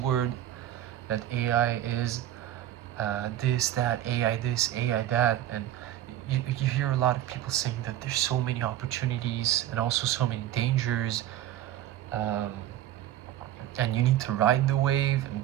that AI is this, that, AI this, AI that, and you hear a lot of people saying that there's so many opportunities and also so many dangers, and you need to ride the wave and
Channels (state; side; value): quieter; left; 12.7 dB